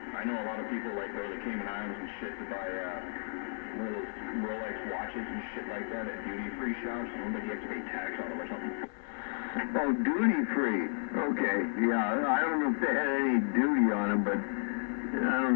I know a lot of people like go to the Cayman Islands and shit to buy one of those Rolex watches and shit like that at duty free shops. I don't think you have to pay tax on them or something. Oh, duty free. Okay, yeah. I don't know if they had any duty on them, but I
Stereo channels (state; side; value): silent; right; digital silence